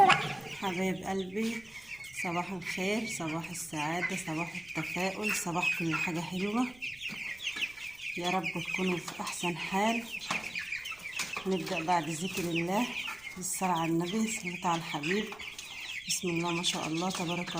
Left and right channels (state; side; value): noise; right; rumble, 24 dB below the sound